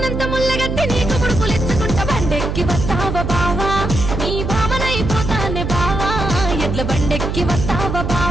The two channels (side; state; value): right; noise; hum, 3 dB below the sound